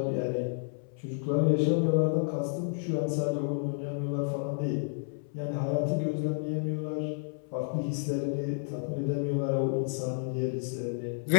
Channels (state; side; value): silent; right; 57 dB below the other